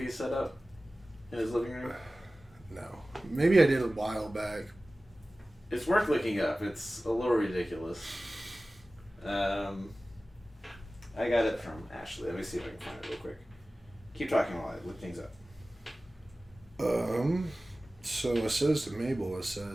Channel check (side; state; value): both; normal; correlation 0.96